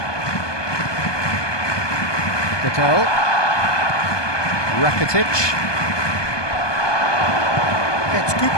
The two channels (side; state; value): right; late; 1.2 ms